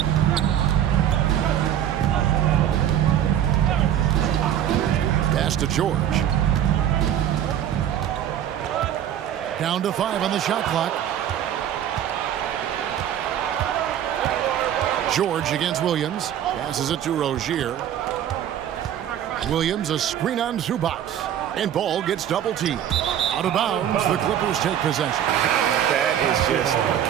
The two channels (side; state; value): left; quieter; 10.4 dB